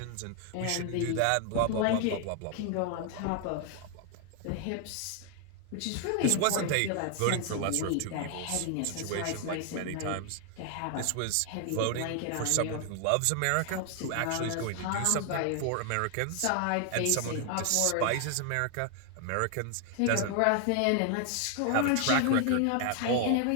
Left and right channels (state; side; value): different; both; correlation 0.00